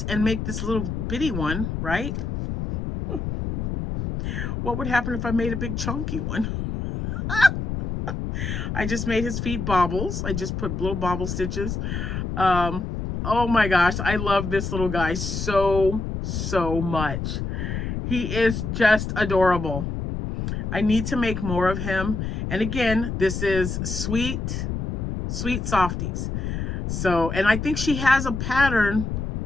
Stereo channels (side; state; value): left; noise; rumble, 3 dB below the sound